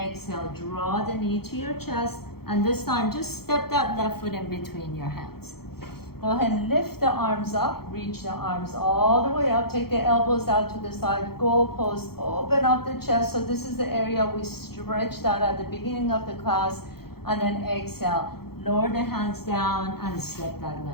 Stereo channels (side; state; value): right; late; 0.95 ms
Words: draw the knee to your chest. And this time, just step that left foot in between your hands. Go ahead and lift the arms up, reach the arms all the way up, take the elbows out to the side, goalpost, open up the chest. So this is the area we stretched out at the beginning of the class. And then exhale, lower the hands down and step that